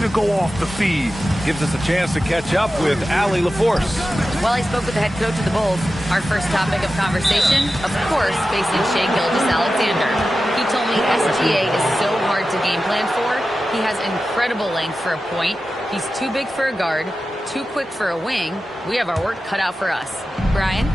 go off the feed. Gives us a chance to catch up with Allie LaForce. While I spoke with the head coach of the Bulls, our first topic of conversation, of course, facing Shai Gilgeous-Alexander. He told me SGA is so hard to game plan for. He has incredible length for a point. He's too big for a guard, too quick for a wing. We have our work cut out for us. Brian?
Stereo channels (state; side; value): normal; both; correlation 0.93